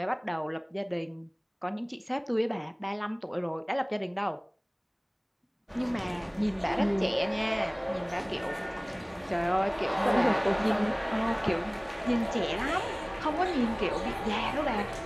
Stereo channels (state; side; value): identical; both; correlation 1.00